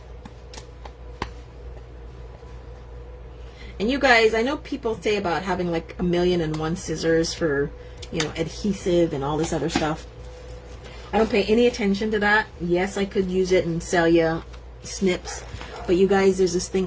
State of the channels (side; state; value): both; identical; correlation 1.00